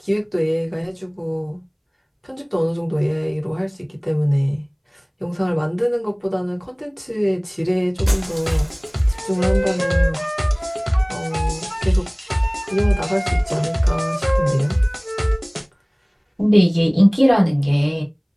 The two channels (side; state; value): both; identical; correlation 1.00